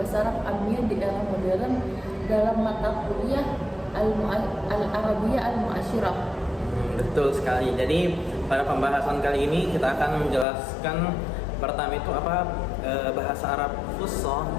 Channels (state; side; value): drops out; right; at 10.5 s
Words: Arab Amiyah di era modern dalam mata kuliah Al-Arabiyah Al-Mu'asyirah. Betul sekali. Jadi pada pembahasan kali ini kita akan menjelaskan pertama itu apa bahasa Arab Fusha